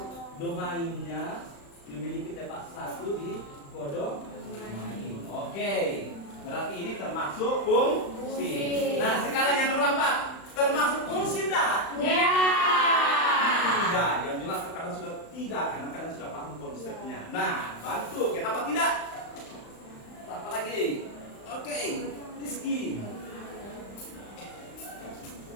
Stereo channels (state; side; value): late; right; 35 ms